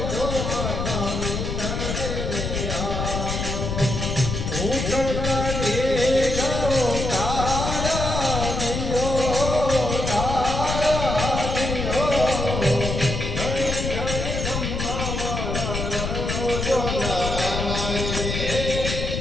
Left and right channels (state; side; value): noise; left; rumble, 2 dB below the sound